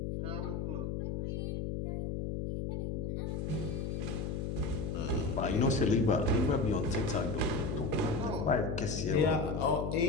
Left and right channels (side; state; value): left; noise; hum, 2 dB below the sound